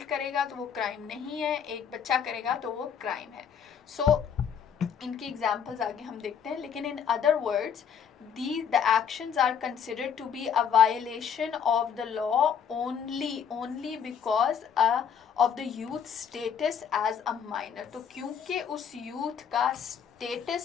करेगा तो वो क्राइम नहीं है, एक बच्चा करेगा तो वो क्राइम है. सो इनकी एग्जाम्पल्स आगे हम देखते हैं. लेकिन in other words the actions are considered to be a violation of the law only because of the youth status as a minor. तो क्योंकि उस youth का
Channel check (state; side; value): quieter; right; 7.6 dB